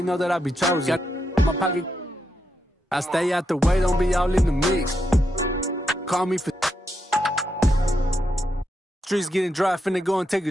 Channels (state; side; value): normal; both; correlation 0.83